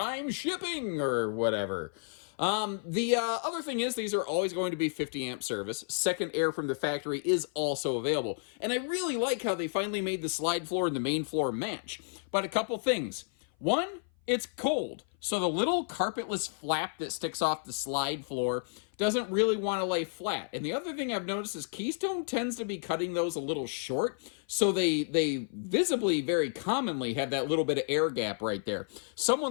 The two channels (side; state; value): right; silent; 55 dB below the other